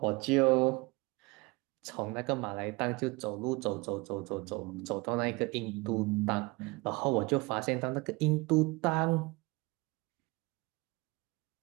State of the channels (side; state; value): left; quieter; 25.3 dB